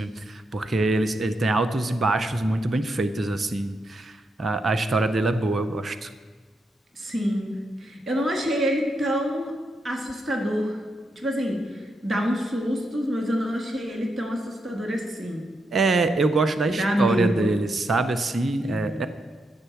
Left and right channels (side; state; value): both; normal; correlation 0.82